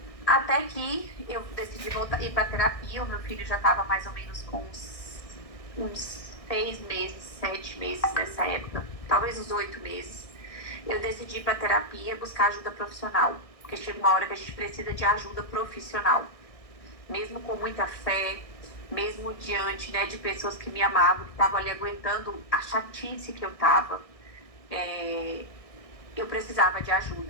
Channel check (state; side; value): late; right; 1.6 ms